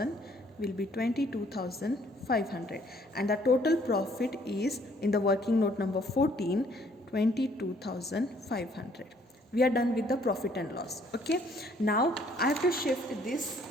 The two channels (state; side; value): normal; both; correlation 0.63